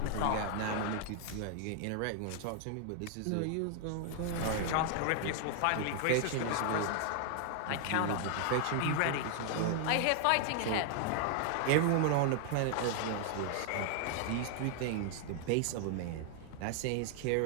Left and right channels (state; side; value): different; both; correlation 0.00